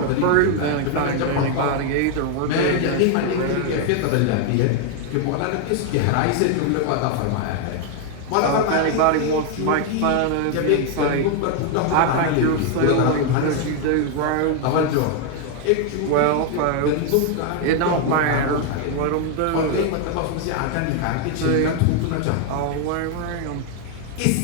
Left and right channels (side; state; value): both; different; correlation 0.00